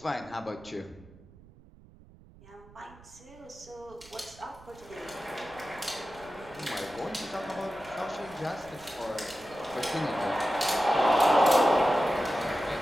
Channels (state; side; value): noise; right; rumble, 23 dB below the sound